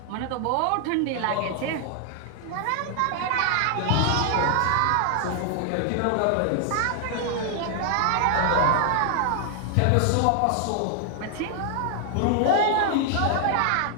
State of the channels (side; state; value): both; different; correlation 0.00